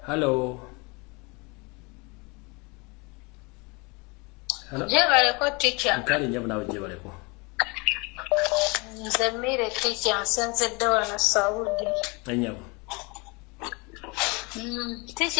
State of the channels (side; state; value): right; quieter; 28.5 dB